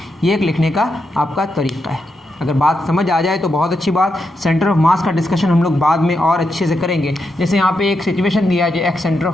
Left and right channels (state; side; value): normal; both; correlation 0.84